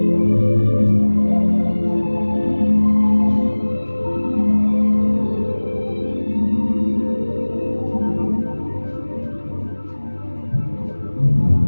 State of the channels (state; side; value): inverted; both; correlation -1.00